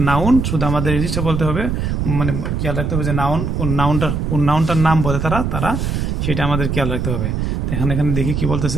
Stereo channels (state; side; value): noise; right; rumble, 1 dB below the sound